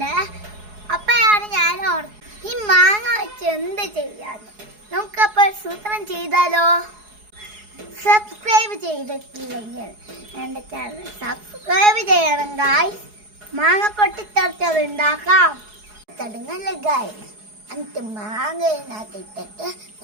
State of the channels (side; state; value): left; late; 4.7 ms